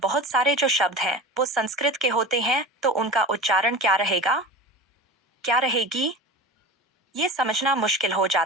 सारे जो शब्द हैं वो संस्कृत के होते हैं, तो उनका उच्चारण क्या रहेगा, क्या रहेगी, ये समझना मुश्किल हो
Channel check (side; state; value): both; normal; correlation 0.31